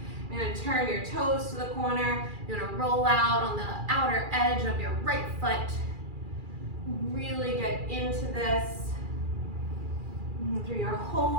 You're gonna turn your toes to the corner. You're gonna roll out on the outer edge of your right foot. Really get into this. Through your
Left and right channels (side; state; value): left; late; 2.4 ms